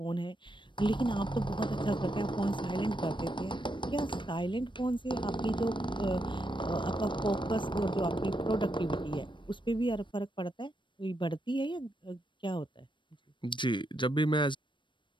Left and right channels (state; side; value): late; right; 0.23 ms